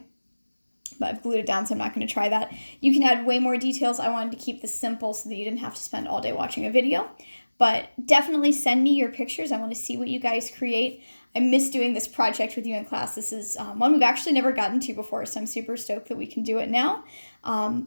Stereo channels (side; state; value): both; inverted; correlation -1.00